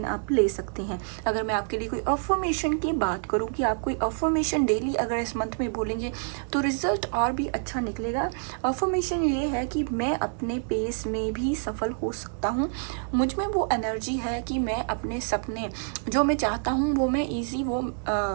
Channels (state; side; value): silent; left; 59 dB below the other